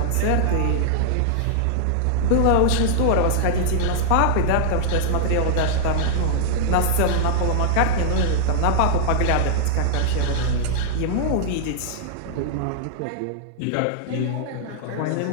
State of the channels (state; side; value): different; both; correlation -0.01